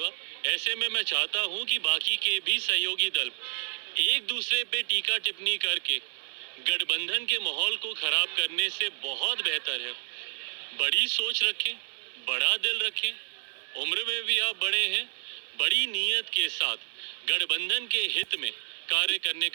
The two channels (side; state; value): left; silent; 58 dB below the other